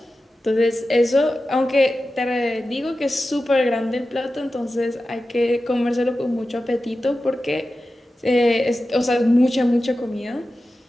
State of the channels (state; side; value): normal; both; correlation 0.93